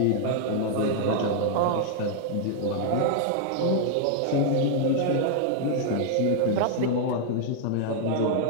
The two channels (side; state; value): both; different; correlation 0.00